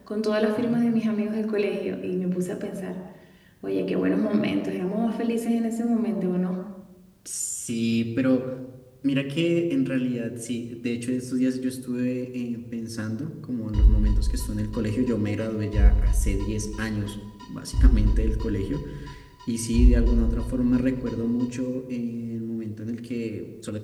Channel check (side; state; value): both; identical; correlation 1.00